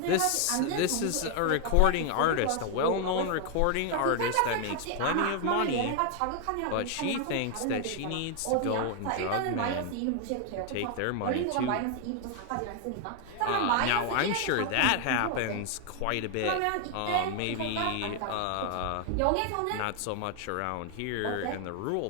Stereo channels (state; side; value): different; both; correlation 0.00